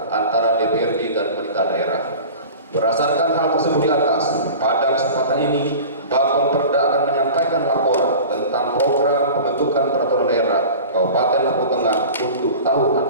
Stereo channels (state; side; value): inverted; both; correlation -0.37